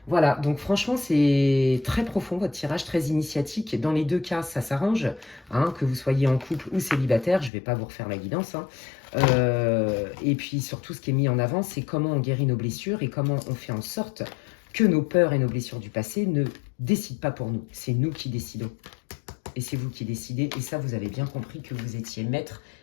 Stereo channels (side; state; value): right; drops out; at 7.5 s